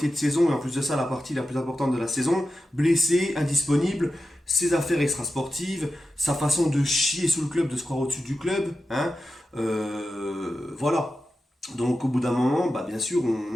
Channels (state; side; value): normal; both; correlation 0.91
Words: de saison, et en plus de ça, la partie la plus importante de la saison, blessé, indisponible, ses affaires extrasportives, sa façon de chier sous le club, de se croire au-dessus du club. Hein. Voilà. Donc au bout d'un moment, bah, bien sûr,